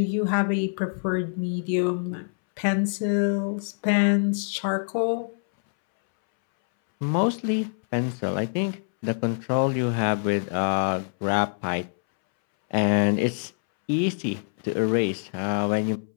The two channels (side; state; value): right; silent; 62 dB below the other